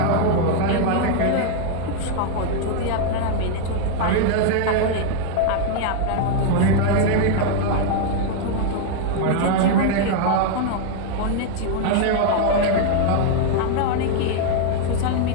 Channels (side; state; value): both; different; correlation 0.00